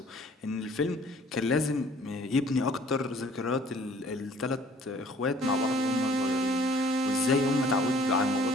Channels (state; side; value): normal; both; correlation 0.55